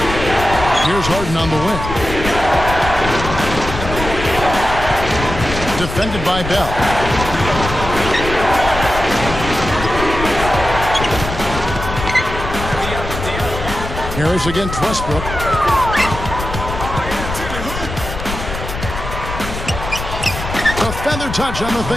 Here's Harden on the wing. Defended by Bell. Harris against Westbrook. A feather touch on the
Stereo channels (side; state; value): left; noise; rumble, 7 dB below the sound